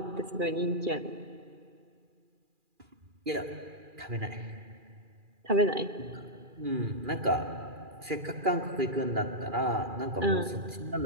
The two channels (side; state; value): left; late; 2.4 ms